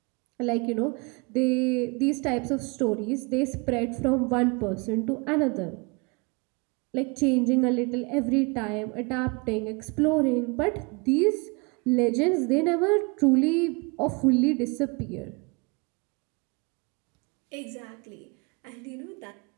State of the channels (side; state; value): left; quieter; 30.0 dB